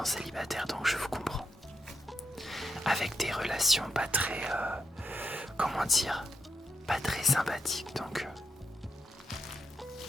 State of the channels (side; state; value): both; normal; correlation 0.82